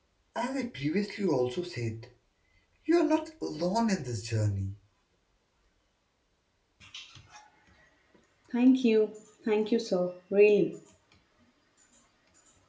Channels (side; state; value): both; identical; correlation 1.00